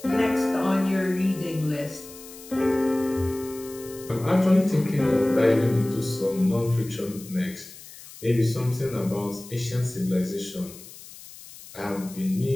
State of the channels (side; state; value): left; noise; hiss, 17 dB below the sound